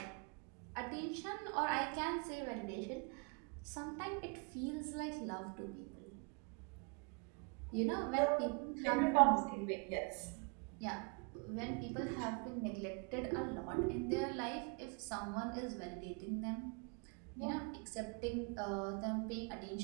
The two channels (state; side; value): quieter; left; 34.4 dB